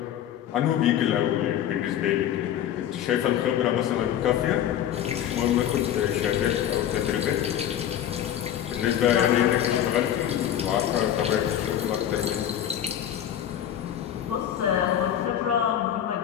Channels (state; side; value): quieter; right; 10.6 dB